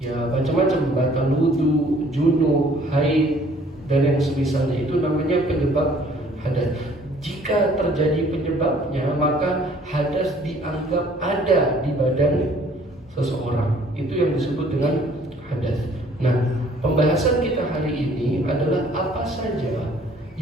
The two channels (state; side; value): normal; both; correlation 0.57